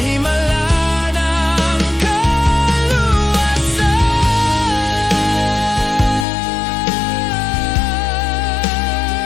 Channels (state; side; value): drops out; right; at 6.2 s